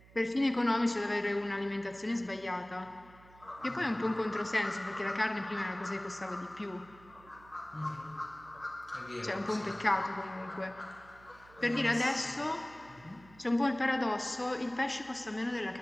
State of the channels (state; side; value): noise; right; hum, 24 dB below the sound